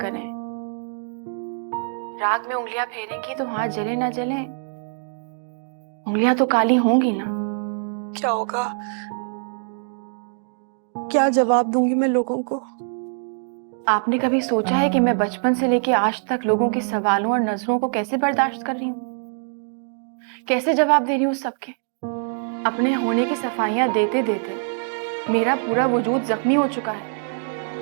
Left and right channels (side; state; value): left; silent; 63 dB below the other